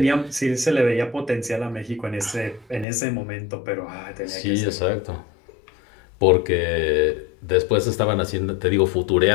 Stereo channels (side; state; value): right; drops out; at 2.9 s